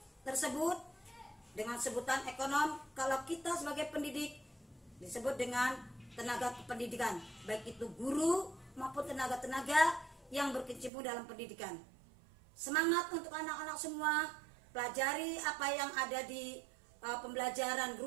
tersebut dengan sebutan ekonom. Kalau kita sebagai pendidik disebut dengan tenaga kependidikan, baik itu guru maupun tenaga-tenaga yang berkecimpung dalam pendidikan. Semangat untuk anak-anak semua, pelajari apa yang ada di pembelajaran,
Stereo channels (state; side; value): drops out; left; at 10.9 s